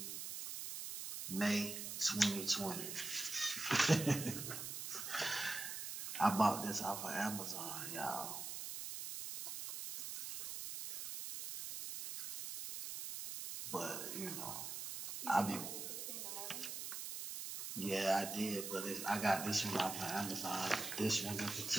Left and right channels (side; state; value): right; noise; hiss, 5 dB below the sound